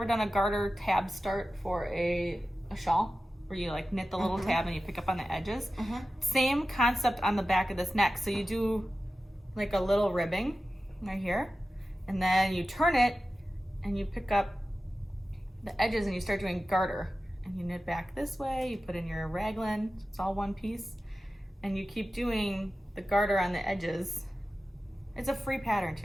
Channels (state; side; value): normal; both; correlation 0.94